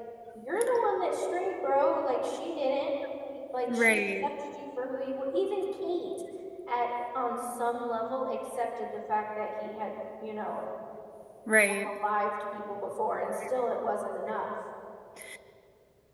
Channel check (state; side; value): identical; both; correlation 1.00